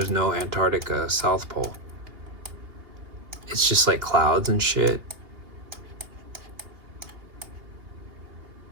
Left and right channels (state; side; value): late; left; 2.8 ms